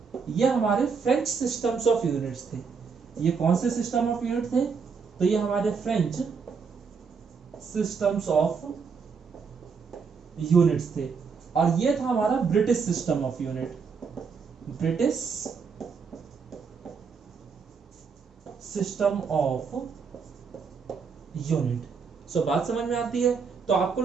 ये हमारे फ्रेंच सिस्टम्स ऑफ यूनिट्स थे। ये कौन से सिस्टम ऑफ यूनिट थे, तो ये हमारे फ्रेंच सिस्टम्स ऑफ यूनिट्स थे। और ये था हमारा British system of unit, British system of unit. So बात समझ में आती है। तो आपको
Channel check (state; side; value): quieter; left; 5.6 dB